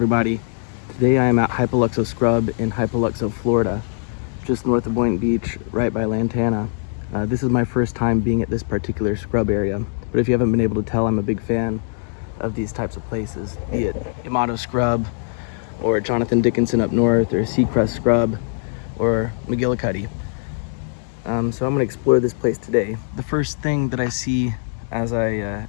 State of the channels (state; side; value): silent; right; digital silence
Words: Today I am at Hypoluxo Scrub in Hypoluxo, Florida, just north of Boynton Beach, right by Lantana. This is my first time being at this particular scrub area, but if you haven't been able to tell, I'm a big fan of these types of places, be it Yamato Scrub, or Jonathan Dickinson up north, or Seacrest Scrub, or McGillicuddy. So I'm going to explore this place today. The first thing that I see as I